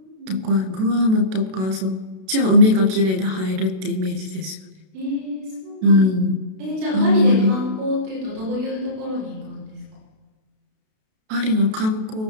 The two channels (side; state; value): left; late; 32 ms